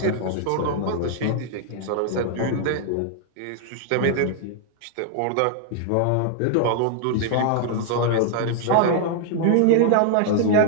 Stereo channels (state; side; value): different; both; correlation 0.00